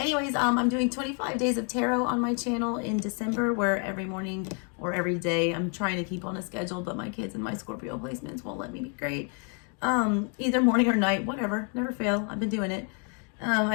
I'm doing 25 days of tarot on my channel in December, where every morning or every day I'm trying to keep on a schedule, but my kids and my Scorpio placements won't let me be great. Either morning or night, whatever. Never fail. I've been doing it.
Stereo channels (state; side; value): quieter; right; 39.3 dB